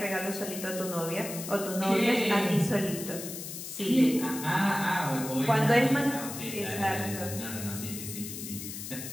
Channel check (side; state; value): left; noise; hiss, 9 dB below the sound